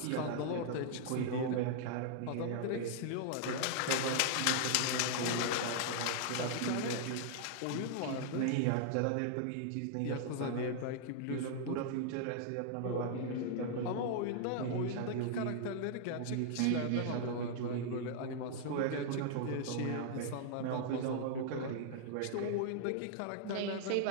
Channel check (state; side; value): different; both; correlation -0.01